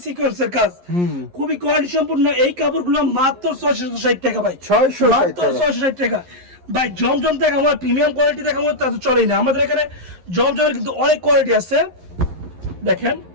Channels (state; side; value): late; left; 11 ms